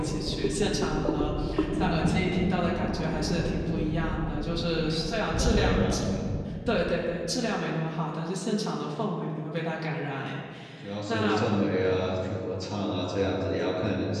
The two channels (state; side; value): identical; both; correlation 1.00